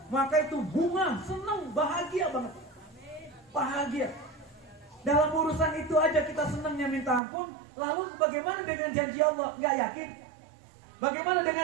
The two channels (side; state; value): left; drops out; at 7.2 s